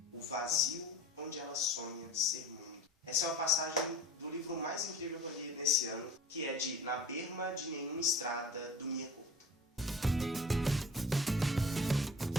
o vazio onde ela sonha ser mundo. Essa é uma passagem do livro mais incrível que eu li nesse ano, que é de Na Berma de Nenhuma Estrada, do Mia Couto.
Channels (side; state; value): both; normal; correlation 0.40